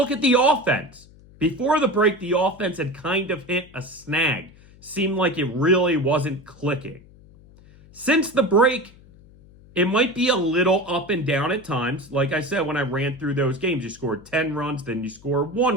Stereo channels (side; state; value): left; noise; hum, 24 dB below the sound